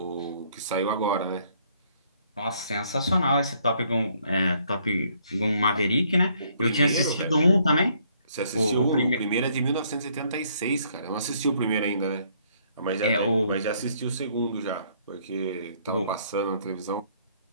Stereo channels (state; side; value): inverted; both; correlation -0.66